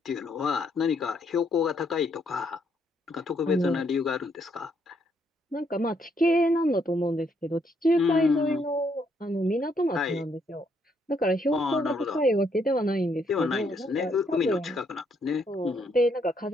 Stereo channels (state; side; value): normal; both; correlation 0.73